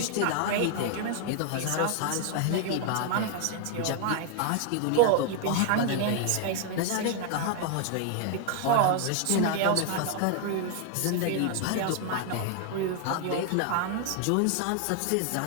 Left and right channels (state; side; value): different; both; correlation 0.00